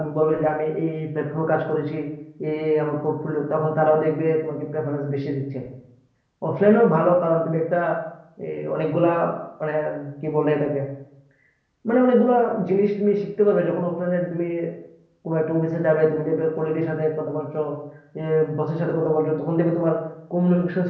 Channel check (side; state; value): both; identical; correlation 1.00